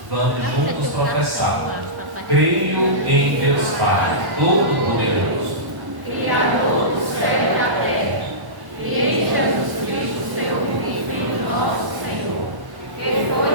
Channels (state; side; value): late; left; 1.1 ms